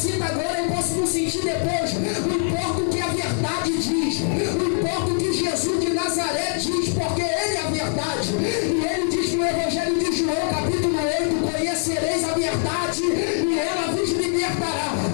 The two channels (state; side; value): silent; right; 61 dB below the other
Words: agora eu posso não sentir depois. Não importa o que a verdade diz. Não importa o que Jesus de Nazaré diz, porque ele é a verdade. E ele diz no Evangelho de João, capítulo 8, conhecereis a verdade e ela vos libertará.